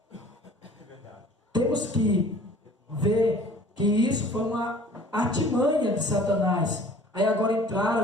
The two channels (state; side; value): normal; both; correlation 0.49